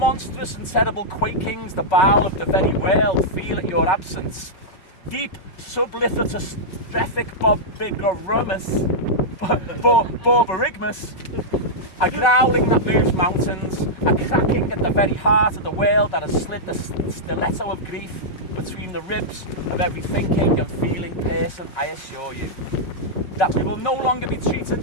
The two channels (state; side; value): late; right; 5.3 ms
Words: and terrible quakings the bowel of the very world feel at your absence. Deep sublithotus strethic borborygmus, a growling that moves mountains, a cracking at the very heart of the world that has slid the stiletto of grief between the ribs of every thinking and feeling person, I assure you. That we will no longer be